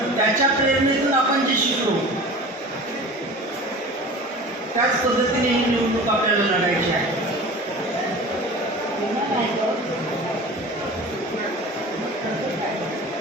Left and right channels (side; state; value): both; normal; correlation 0.37